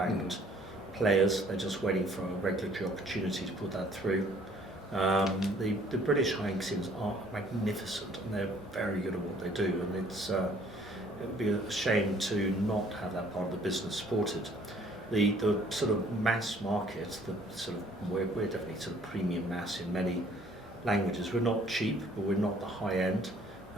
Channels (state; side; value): normal; both; correlation 0.58